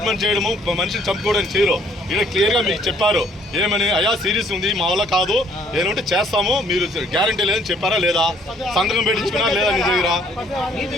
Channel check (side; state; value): both; normal; correlation 0.62